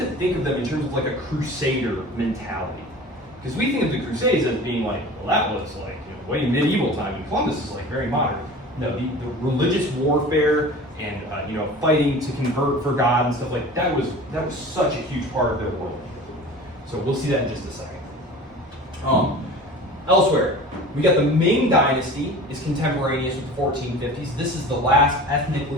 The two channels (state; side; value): normal; both; correlation 0.39